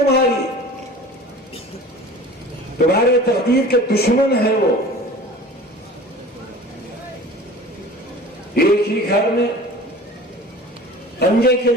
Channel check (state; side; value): normal; both; correlation 0.41